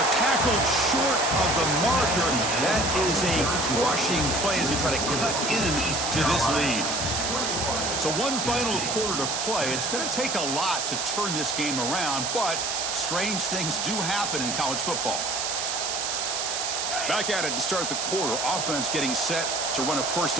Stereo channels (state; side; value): noise; right; hiss, 1 dB below the sound